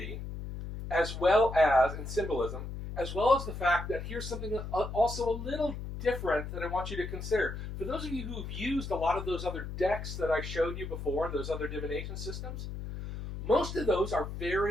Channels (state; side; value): noise; left; hum, 7 dB below the sound